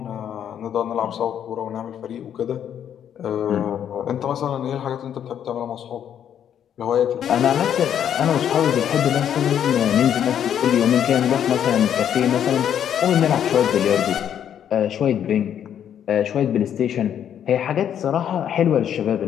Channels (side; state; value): right; quieter; 9.4 dB